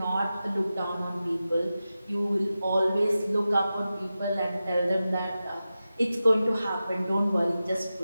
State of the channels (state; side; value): inverted; both; correlation -0.93